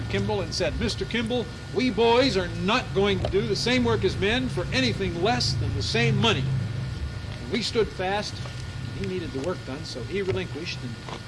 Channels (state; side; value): identical; both; correlation 1.00